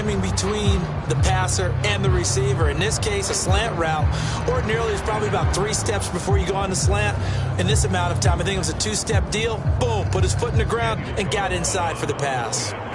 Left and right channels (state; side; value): identical; both; correlation 1.00